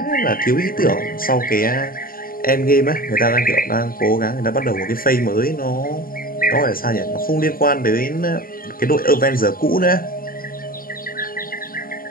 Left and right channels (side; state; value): right; late; 0.42 ms